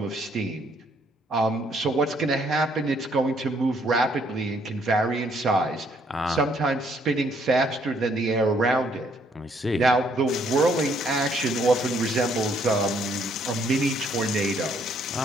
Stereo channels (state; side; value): normal; both; correlation 0.67